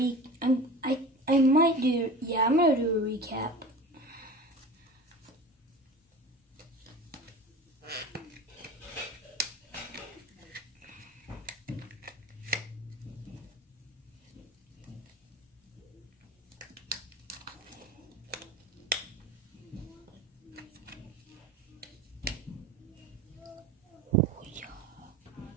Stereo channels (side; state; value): both; normal; correlation 0.35